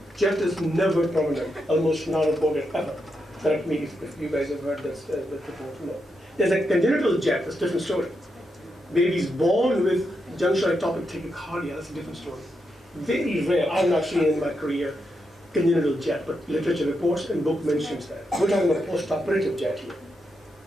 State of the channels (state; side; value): normal; both; correlation 0.84